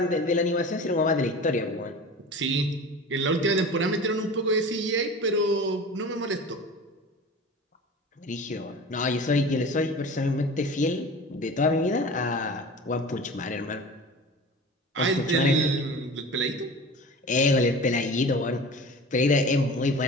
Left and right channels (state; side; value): normal; both; correlation 0.36